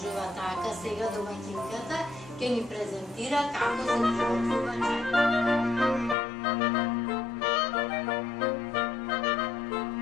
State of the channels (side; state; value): right; drops out; at 6.2 s